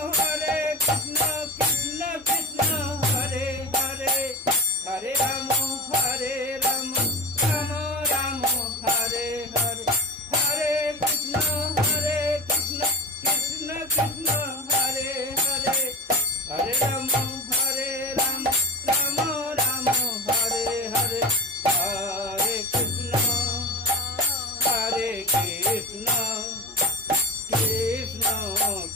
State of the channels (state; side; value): normal; both; correlation 0.27